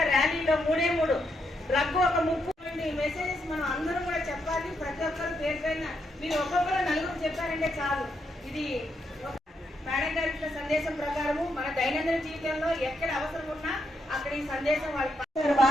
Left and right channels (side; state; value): both; normal; correlation 0.79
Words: ర్యాలీలో మూడు డ్రగ్ ఒక 30 మెసేజెస్ మనం అందరం కూడా చెప్పాలి. ప్రతి ఒక్కరు పేరు పైన మీరు ఒక్కొక్కరు నలుగురు చెప్పారంటే చాలు. ఇది మేడం గారి ఇచ్చిన సందేశం ప్రకారము మన దైనందిన జీవితంలో ఎక్కడ అవసరం ఉన్నా అక్కడ ఈ సందేశం వారికి